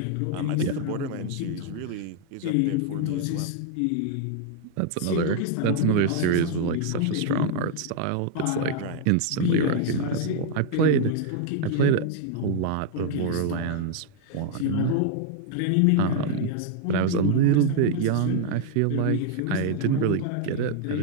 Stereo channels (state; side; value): different; both; correlation 0.00